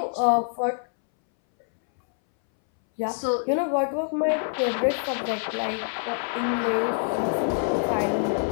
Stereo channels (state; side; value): silent; right; 61 dB below the other